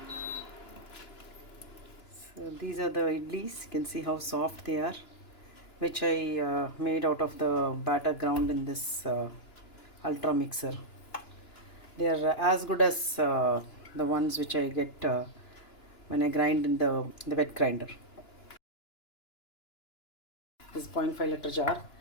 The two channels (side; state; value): right; late; 2.9 ms